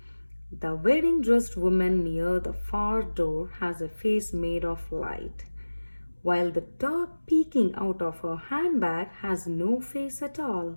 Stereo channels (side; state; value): both; inverted; correlation -1.00